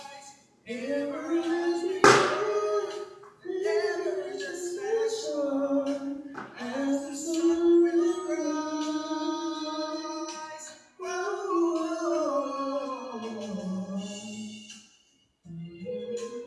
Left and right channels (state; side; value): identical; both; correlation 1.00